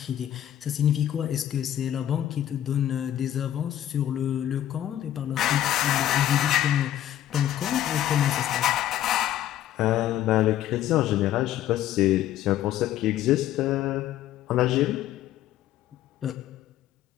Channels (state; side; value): quieter; right; 12.1 dB